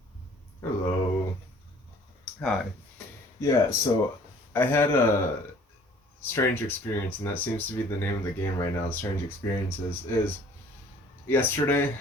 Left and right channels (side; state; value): both; normal; correlation 0.54